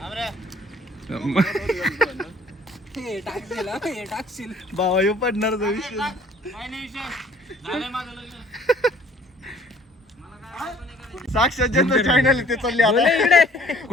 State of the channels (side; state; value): both; normal; correlation 0.55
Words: बाबा येऊ पडणार विषय. साक्षात ज्यांचं चॅनल ते चालले आता.